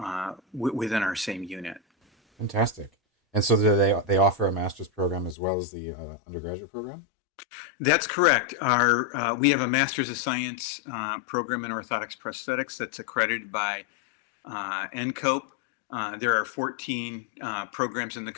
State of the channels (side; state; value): right; drops out; at 5.4 s